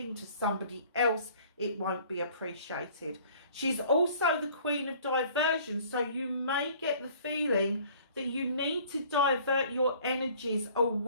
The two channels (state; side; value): inverted; both; correlation -0.53